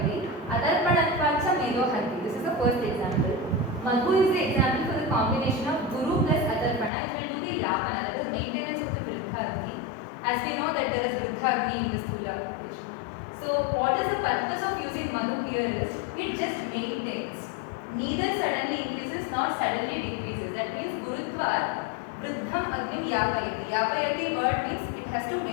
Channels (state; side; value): drops out; right; at 6.9 s